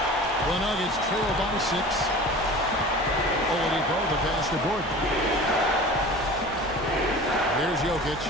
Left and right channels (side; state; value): both; normal; correlation 0.38